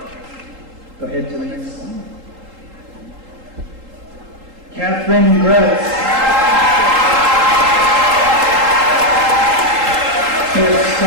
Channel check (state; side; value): late; left; 3.8 ms